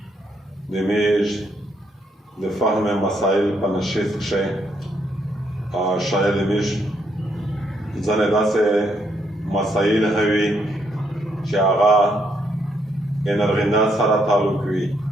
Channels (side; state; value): both; normal; correlation 0.74